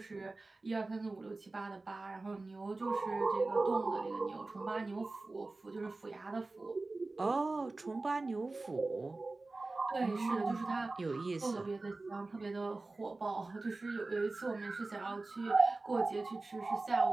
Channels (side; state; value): left; quieter; 3.3 dB